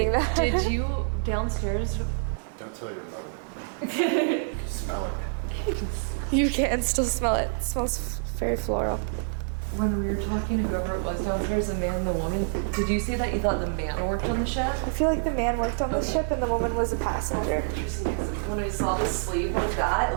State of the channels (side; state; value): left; silent; 60 dB below the other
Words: Wait, that. did you downstairs? Don't tell your mother. Smell it. You can still smell it. It smells very floral. When we were talking to whoever it was downstairs, the man and the woman, did you say that you thought the man worked on the ship? I feel like the man worked on the ship and the woman was a passenger. When I saw the sleeve like that,